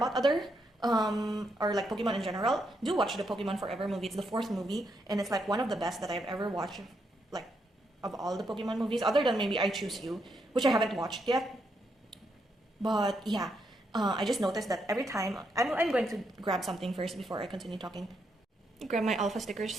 other or like Pokemon in general, do watch the Pokemon Forever movie. It's the 4th movie, and it's like one of the best that I've ever watched, like of all the Pokemon movies, other than maybe I Choose You, which I haven't watched yet. But yeah, I just noticed that every time, I'm going to grab something first before I continue talking. Grab my alpha stickers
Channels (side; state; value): both; normal; correlation 0.79